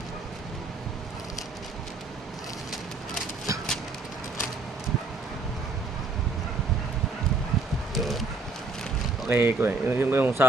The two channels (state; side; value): quieter; left; 3.2 dB